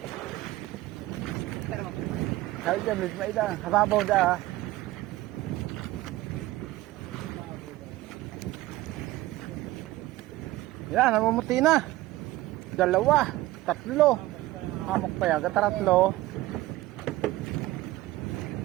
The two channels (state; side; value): quieter; left; 17.5 dB